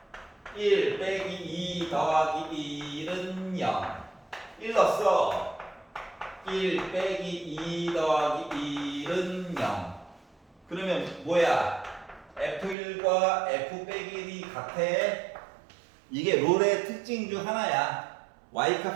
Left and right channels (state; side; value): drops out; left; at 12.8 s